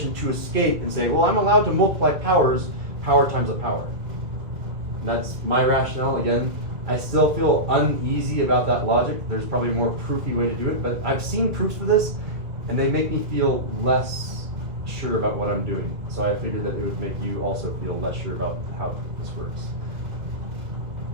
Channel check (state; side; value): late; left; 1.8 ms